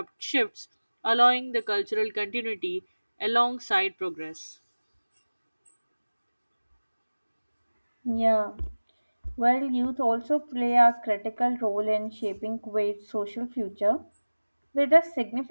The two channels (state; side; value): inverted; both; correlation -1.00